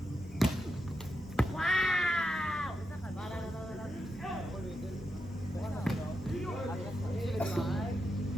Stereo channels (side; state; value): both; normal; correlation 0.86